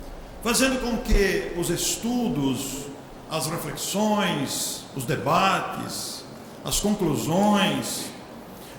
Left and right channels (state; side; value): identical; both; correlation 1.00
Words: fazendo com que os estudos, as reflexões, os debates, as conclusões,